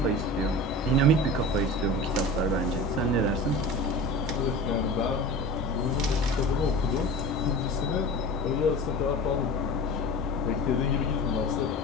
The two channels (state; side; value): normal; both; correlation 0.33